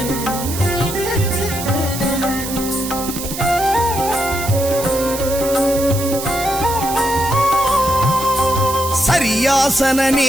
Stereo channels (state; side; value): noise; right; hiss, 8 dB below the sound